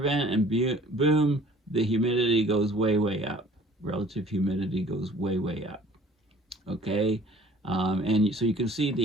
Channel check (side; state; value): both; normal; correlation 0.52